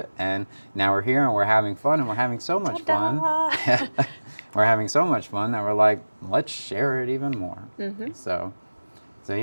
and now we're here and we're having fun, and we're having so much fun. Ta-da! We're having so much fun that we're like, let's share it even more. So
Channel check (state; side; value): inverted; both; correlation -1.00